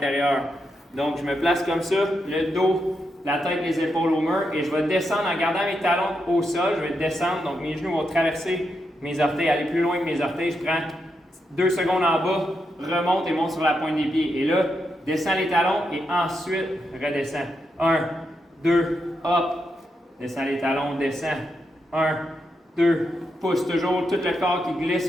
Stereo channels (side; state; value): both; normal; correlation 0.83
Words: Donc, je me place comme ça, le dos, la tête, les épaules au mur et je vais descendre en gardant mes talons au sol. Je vais descendre, donc mes genoux vont traverser mes orteils, aller plus loin que mes orteils. Je prends 2 secondes en bas, remonte et monte sur la pointe des pieds. Et là, descends les talons et ensuite, redescends. 1, 2, hop. Descends les talons, descends. 1, 2, pousse toujours tout le corps qui